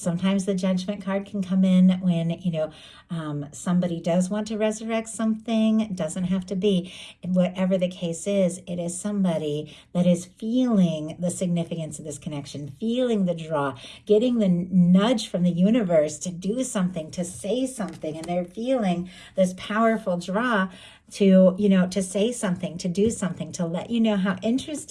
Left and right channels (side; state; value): both; identical; correlation 1.00